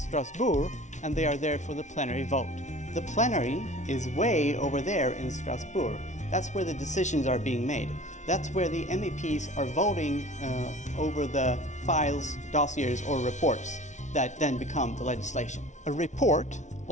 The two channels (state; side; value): late; right; 0.35 ms